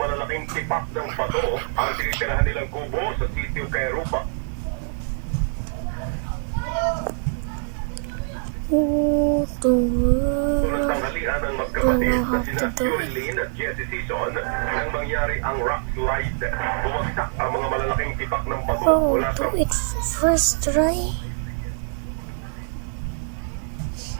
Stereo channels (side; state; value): left; silent; 62 dB below the other